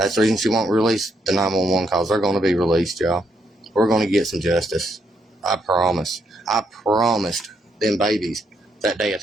the reason she won't release the 911 calls. They're going to be released, y'all. We're going to get some justice. I promise. I promised them babies that day at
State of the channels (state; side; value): normal; both; correlation 0.76